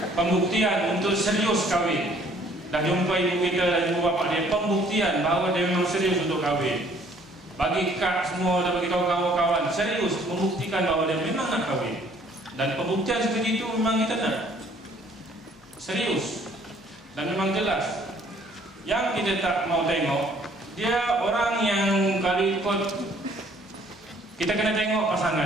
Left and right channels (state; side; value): normal; both; correlation 0.59